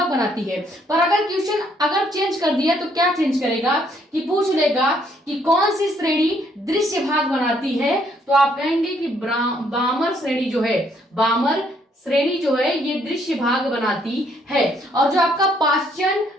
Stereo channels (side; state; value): both; normal; correlation 0.69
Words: बनाती है। पर अगर क्वेश्चन अगर चेंज कर दिया तो क्या चेंज करेगा कि पूछ लेगा कि कौन सी श्रेणी दृश्य भाग बनाती है, तो आप कहेंगे कि बामर श्रेणी जो है, बामर श्रेणी जो है ये दृश्य भाग बनाती है। और जो आपका पास्चन,